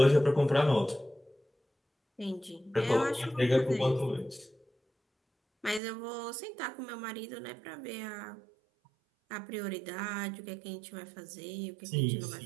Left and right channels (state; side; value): drops out; left; at 5.8 s